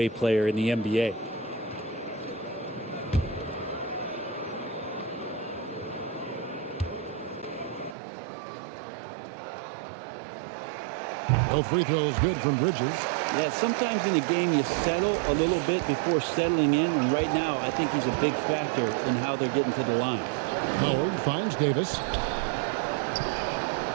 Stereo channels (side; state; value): left; drops out; at 8.0 s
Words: player in the NBA. Both free throws good from Bridges. Yeah, sometimes in the game you settle a little bit before settling in, and right now I think he's a big factor in how they're getting to the line. Howard finds Davis.